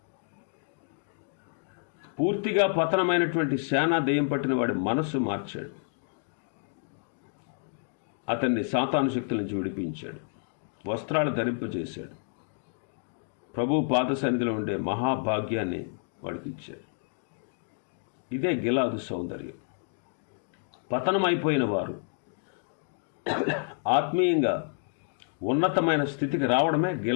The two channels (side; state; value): right; silent; digital silence